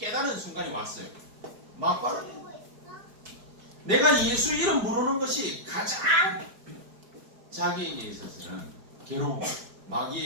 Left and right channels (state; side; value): late; left; 4.6 ms